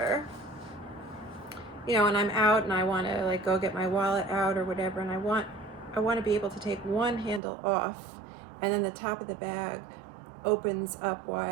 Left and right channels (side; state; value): left; drops out; at 7.4 s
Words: you know, and I'm out and I want to like go get my wallet out or whatever, and I want to be able to take one handle off, and then the top of the bag opens up